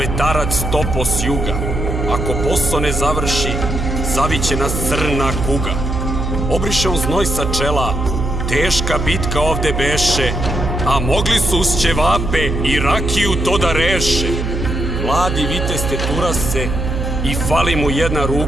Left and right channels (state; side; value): noise; right; hum, 2 dB below the sound